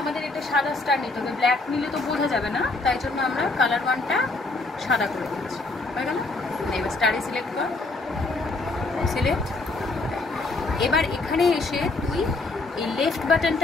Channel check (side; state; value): right; quieter; 3.4 dB